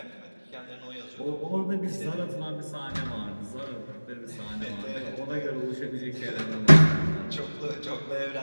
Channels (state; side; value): inverted; both; correlation -1.00